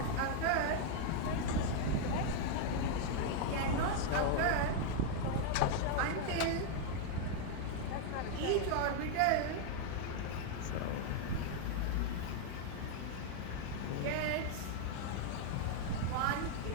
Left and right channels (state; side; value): different; both; correlation 0.00